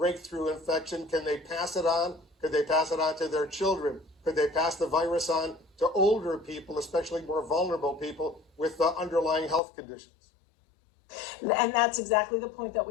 infection? Can they pass it on? Could they pass it on to their children? Could they pass the virus on to older people, especially more vulnerable people with underlying health conditions? And that's exactly the point that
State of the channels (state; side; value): drops out; right; at 9.6 s